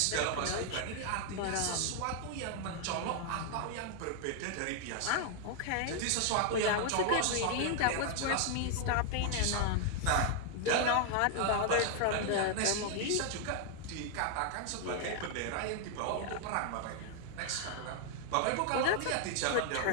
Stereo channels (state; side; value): different; both; correlation 0.00